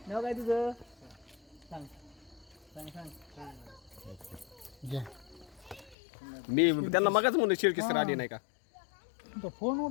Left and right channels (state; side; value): drops out; right; at 6.0 s